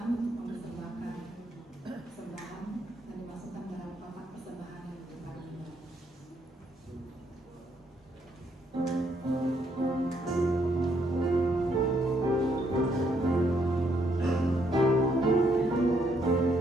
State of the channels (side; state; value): both; normal; correlation 0.72